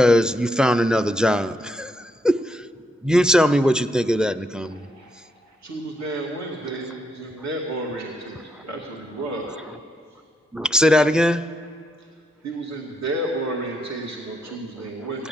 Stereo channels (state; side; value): normal; both; correlation 0.78